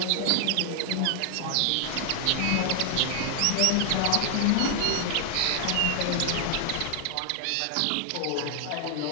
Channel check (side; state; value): both; different; correlation 0.00